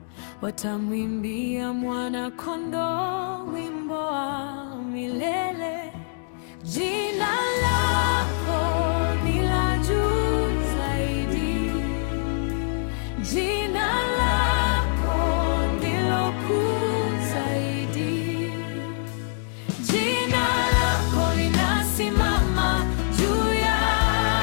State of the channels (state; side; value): silent; right; digital silence